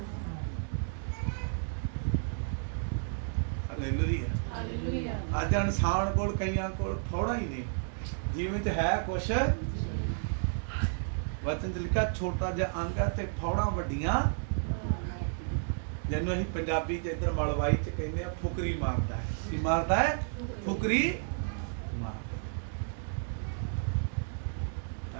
ਹਾਲੇਲੂਇਆ। ਅੱਜ ਇਨਸਾਨ ਕੋਲ, ਕਈਆਂ ਕੋਲ ਫੋੜਾ ਹੀ ਨਹੀਂ, ਜਿਵੇਂ ਚ ਹੈ ਕੁਛ। ਵਚਨ ਚ ਲਿਖਿਆ ਛੋਟਾ ਜਿਹਾ ਅੰਗ ਹੈ ਤੇ ਫੋੜਾ ਵੱਡੀਆਂ, ਜਿਹਨੂੰ ਅਸੀਂ ਪੰਜਾਬੀ ਚ ਇੱਧਰ ਮਲਵਾਈ ਚ ਕਹਿੰਦੇ ਆ ਫੁਕਰੀ ਮਾਰਦਾ ਹੈ। ਕੀ ਮਾਰਦਾ ਹੈ? ਫੁਕਰੀ ਮਾਰਦਾ।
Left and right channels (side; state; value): left; silent; digital silence